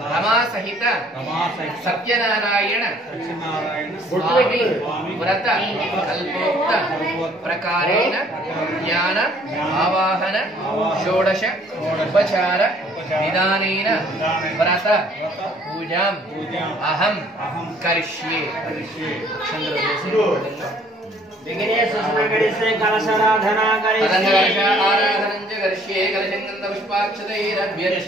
रमा सहित सत्यनारायण स्वामी व्रत कल्पोक्त प्रकारेण ज्ञान आवाहन षोडश उपचार निदानेन व्रत पूजां अहं करिष्ये विघ्नेश सुमंगलस्य कलशाराधना करिष्ये आराधनं च करिष्ये कलशं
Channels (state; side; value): normal; both; correlation 0.59